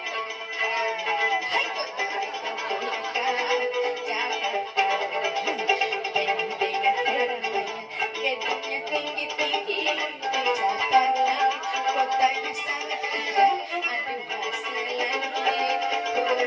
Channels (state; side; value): identical; both; correlation 1.00